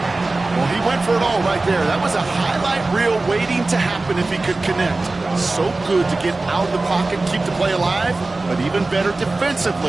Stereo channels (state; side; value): quieter; left; 3.2 dB